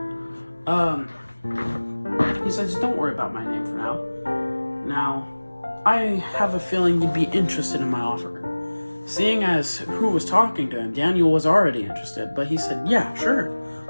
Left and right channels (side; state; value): both; inverted; correlation -1.00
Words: He says, don't worry about my name for now. Now, I have a feeling you'd be interested in my offer. Seeing as who was talking to him, Daniel was already interested, but he said, yeah, sure.